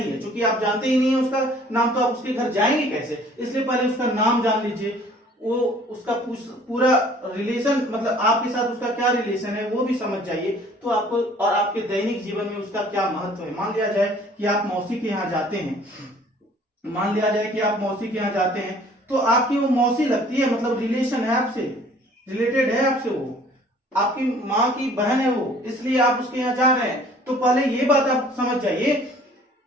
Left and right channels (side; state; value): both; normal; correlation 0.54